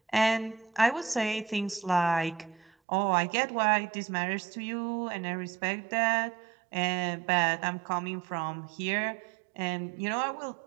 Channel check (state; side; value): drops out; left; at 2.7 s